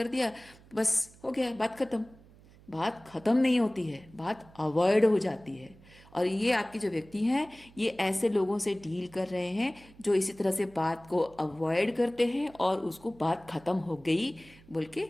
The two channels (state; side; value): noise; right; hum, 24 dB below the sound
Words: दिया, बस हो गया, बात खत्म। बात खत्म नहीं होती है, बात अवॉइड हो जाती है। और ये आपके जो व्यक्ति हैं, ये ऐसे लोगों से डील कर रहे हैं जो इसी तरह से बात को अवॉइड करते हैं और उसको बात खत्म हो गई बोल के